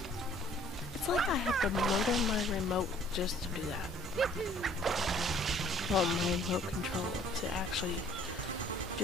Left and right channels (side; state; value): both; normal; correlation 0.56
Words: It's like I have to murder my remote just to do that. Well, my remote control to actually